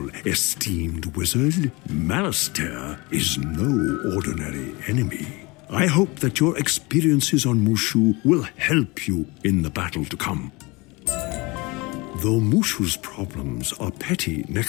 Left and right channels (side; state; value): right; quieter; 25.2 dB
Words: esteemed wizard. Malastair is no ordinary enemy. I hope that your experiences on Mooshu will help you in the battle to come. Though Mooshu's problems are petty